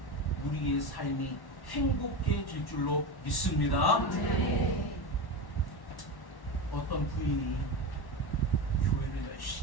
우리의 삶이 행복해질 줄로 믿습니다. 어떤 부인이 교회를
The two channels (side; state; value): right; late; 1.1 ms